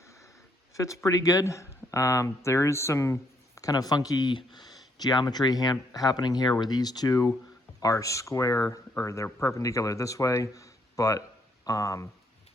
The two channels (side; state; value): both; normal; correlation 0.71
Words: fits pretty good. There is some kind of funky geometry happening here, where these two are square, or they're perpendicular this way, but